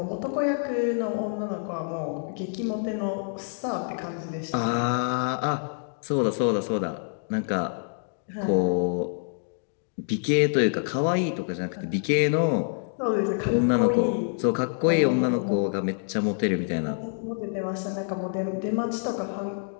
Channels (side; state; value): right; silent; digital silence